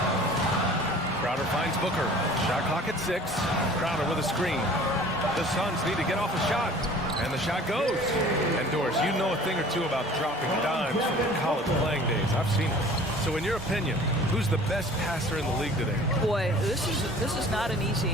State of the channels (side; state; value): both; normal; correlation 0.47